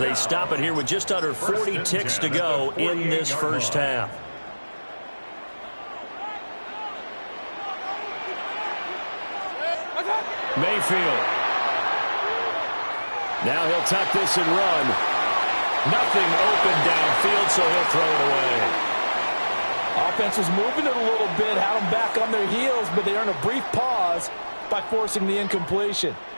stop it here with just under 40 ticks to go in this first half. Mayfield. Now he'll tuck this and run. Nothing open downfield, so he'll throw it away. Offense was moving it a little bit, had them back on their heels, but they earned a brief pause by forcing the incompletion.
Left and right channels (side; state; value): both; inverted; correlation -1.00